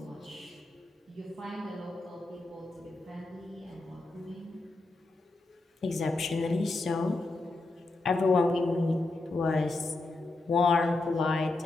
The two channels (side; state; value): right; quieter; 3.1 dB